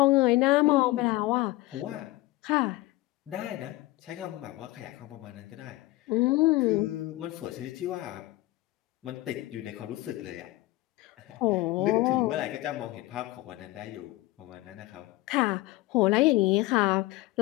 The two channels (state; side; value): quieter; right; 18.5 dB